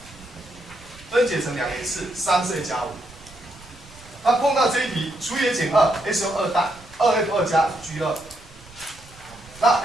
分解成两个次，3是 a 加5。那碰到这一题，除以 a 减2 ，s 用2代，2f2 加 g2，那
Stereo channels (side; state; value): right; noise; rumble, 22 dB below the sound